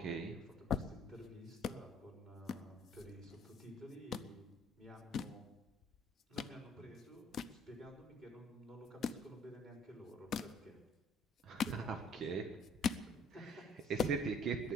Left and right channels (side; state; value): both; normal; correlation 0.57